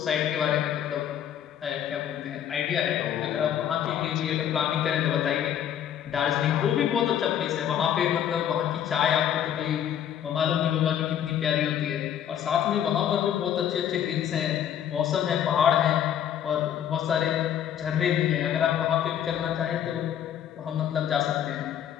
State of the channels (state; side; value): quieter; right; 9.9 dB